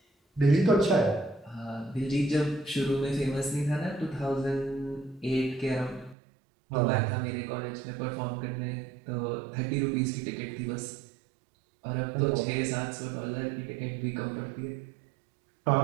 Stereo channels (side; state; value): left; drops out; at 6.2 s